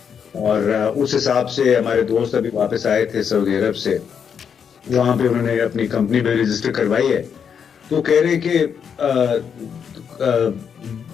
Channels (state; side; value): quieter; right; 7.3 dB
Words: اور اس حساب سے ہمارے دوست ابھی واپس آئے تھے سعودی عرب سے, وہاں پہ انہوں نے اپنی کمپنی بھی رجسٹر کروائی ہے, تو کہہ رہے کہ